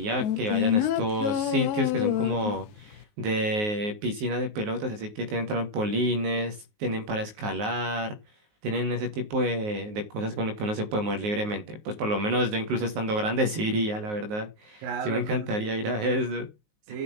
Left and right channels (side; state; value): left; late; 19 ms